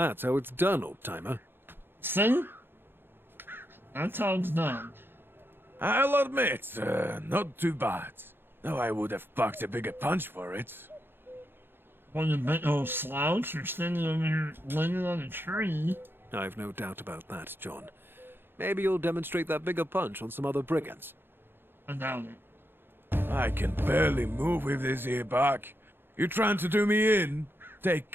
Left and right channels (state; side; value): late; left; 0.10 ms